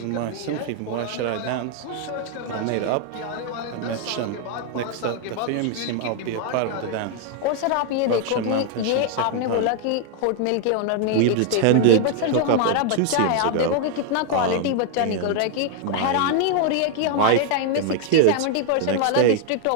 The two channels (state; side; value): different; both; correlation 0.00